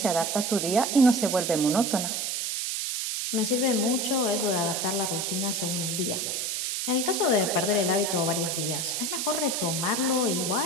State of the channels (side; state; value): right; noise; hiss, 1 dB below the sound